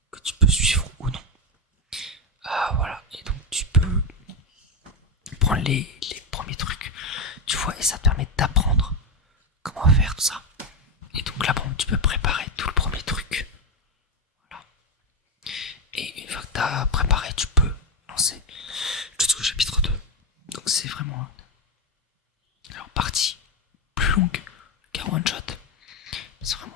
que tu peux suivre ou non. Voilà, et donc tu peux prendre les premiers trucs, tu vois, et ça te permet d'apprendre comment faire tout ça. Et donc là, bon, tu peux préparer tout le premier truc. Voilà. Et une fois que t'as préparé, tu peux lancer jusqu'au chapitre 2. Donc c'est vraiment alors partie plus longue qu'un one shot. C'est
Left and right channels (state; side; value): normal; both; correlation 0.09